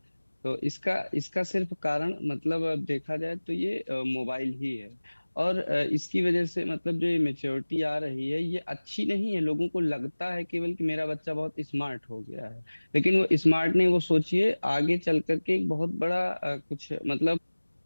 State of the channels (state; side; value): inverted; both; correlation -1.00